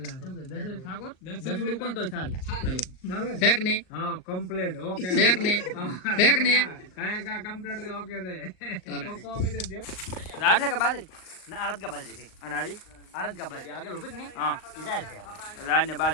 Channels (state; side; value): late; right; 38 ms